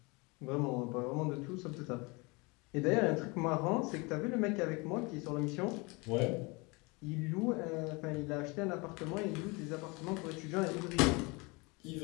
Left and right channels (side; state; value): right; quieter; 27.2 dB